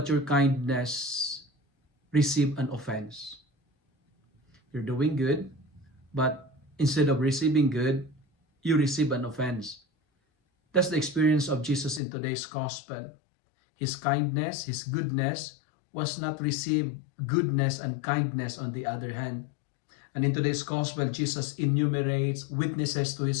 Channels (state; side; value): drops out; right; at 12.0 s